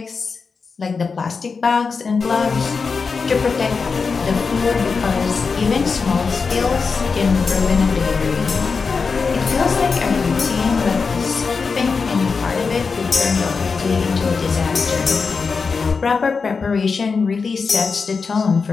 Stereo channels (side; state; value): right; quieter; 5.0 dB